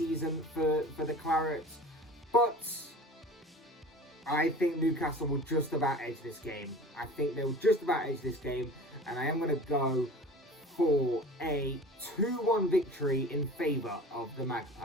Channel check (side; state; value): both; normal; correlation 0.39